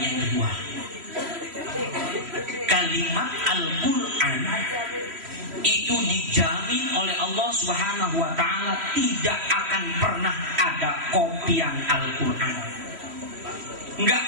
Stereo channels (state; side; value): late; left; 3.1 ms